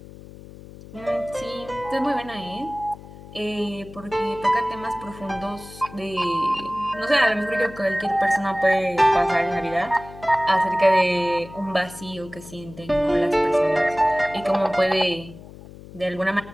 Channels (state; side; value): noise; left; hum, 17 dB below the sound